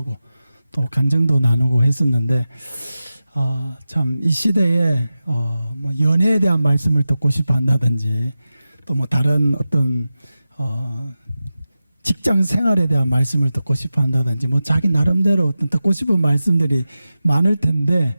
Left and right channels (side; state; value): both; inverted; correlation -0.94